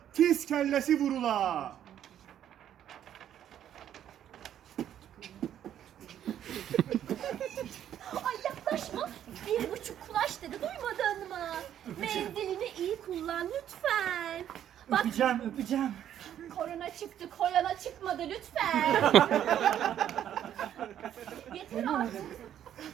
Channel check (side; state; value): left; quieter; 10.5 dB